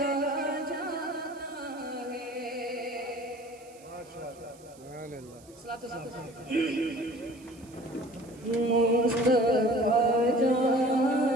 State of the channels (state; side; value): noise; right; hiss, 25 dB below the sound